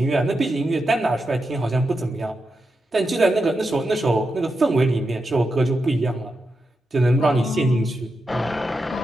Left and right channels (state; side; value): normal; both; correlation 0.87